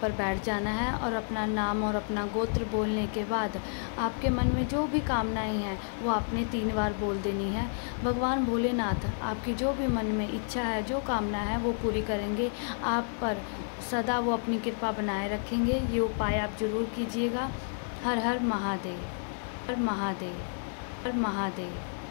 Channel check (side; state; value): right; silent; digital silence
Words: बैठ जाना है और अपना नाम और अपना गोत्र बोलने के बाद आपके मन में जो भी कामनाएं हैं वो आपने 3 बार बोल देनी है। भगवान भोलेनाथ आपकी जो भी मन में इच्छा है, जो कामना है वो पूरी करेंगे। आप पर सदा वो अपनी कृपा बनाए रखेंगे। ये उपाय आप ज़रूर कीजिएगा। हर हर महादेव, हर महादेव, हर महादेव,